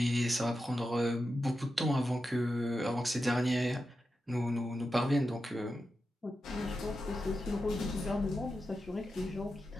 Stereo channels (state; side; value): normal; both; correlation 0.90